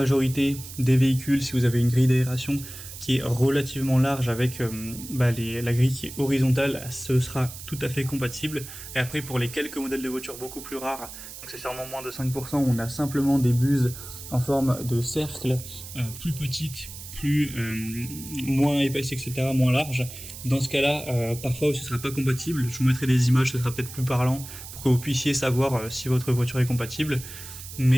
des véhicules, si vous avez une grille d'aération qui est relativement large avec la grille qui est horizontale, ce sera tout à fait compatible. Et après, pour les quelques modèles de voitures beaucoup plus rares, donc c'est sûrement moins de 5%, on a simplement des buses en forme de cercle, plus petites, moins épaisse, etc., moins large. Dans ce cas-là, parfois ce sera pas compatible. Je vous mettrai des images, ce sera peut-être plus parlant pour que vous puissiez savoir si votre voiture est compatible.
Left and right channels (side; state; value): right; noise; hiss, 13 dB below the sound